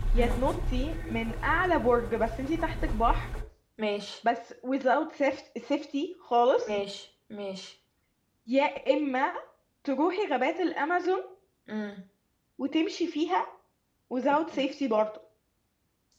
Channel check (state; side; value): identical; both; correlation 1.00